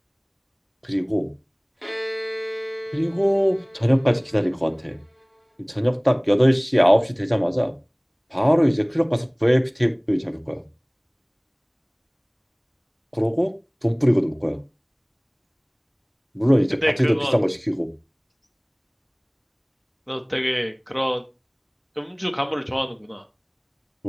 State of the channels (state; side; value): identical; both; correlation 1.00